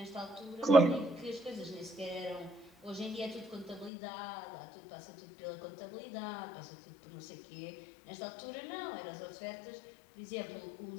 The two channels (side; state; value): right; drops out; at 3.9 s